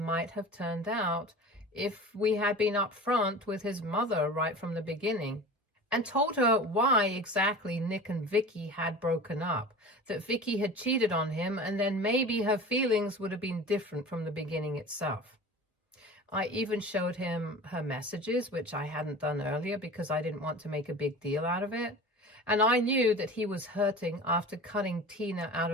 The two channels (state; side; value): normal; both; correlation 0.36